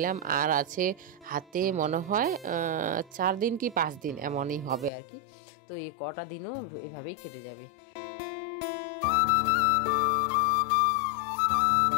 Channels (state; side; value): drops out; right; at 4.9 s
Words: আর আছে হাতে মনে হয় 4 দিন কি 5 দিন এমনই হবে আর কি। তো এই কটা দিনও এভাবেই কেটে যাবে।